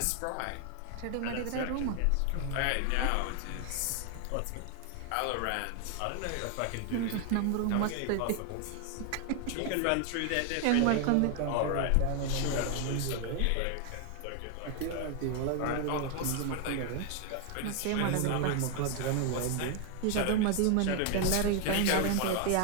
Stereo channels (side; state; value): both; different; correlation 0.00